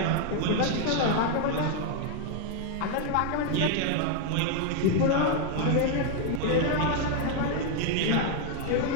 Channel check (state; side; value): different; both; correlation 0.00